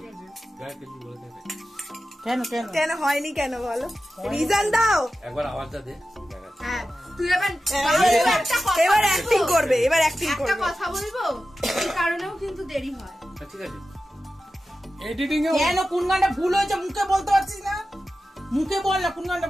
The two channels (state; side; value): normal; both; correlation 0.93